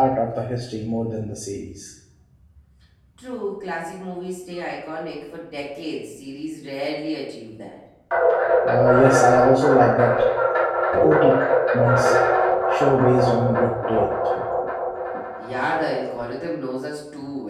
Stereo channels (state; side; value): identical; both; correlation 1.00